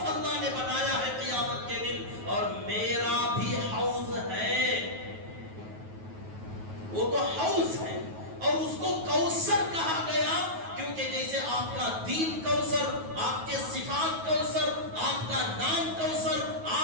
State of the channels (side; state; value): left; late; 9.3 ms